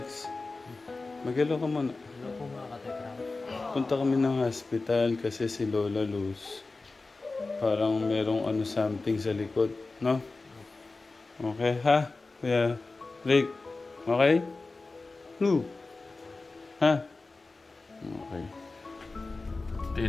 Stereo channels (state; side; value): quieter; right; 3.6 dB